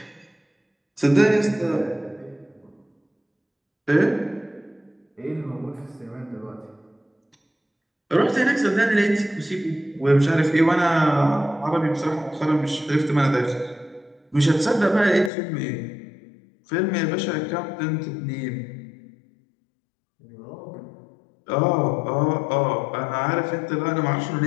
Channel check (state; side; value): drops out; right; at 15.3 s